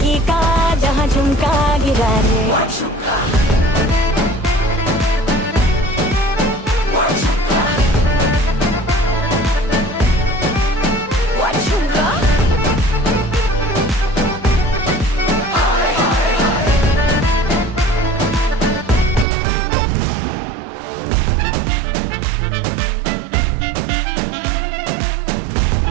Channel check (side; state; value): left; drops out; at 19.2 s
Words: का जहां झुमका गिरा रे।